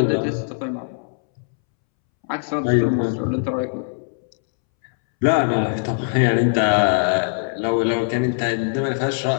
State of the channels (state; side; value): silent; right; 65 dB below the other